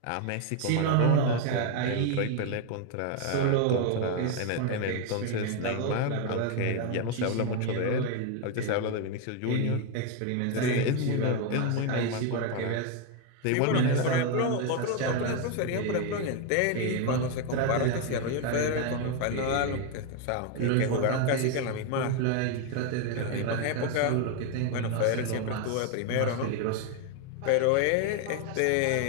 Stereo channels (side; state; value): both; different; correlation 0.01